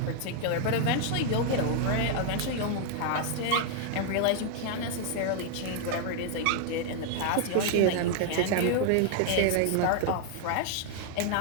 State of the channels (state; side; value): different; both; correlation 0.00